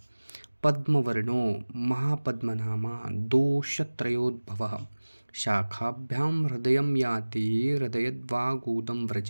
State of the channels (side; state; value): both; inverted; correlation -1.00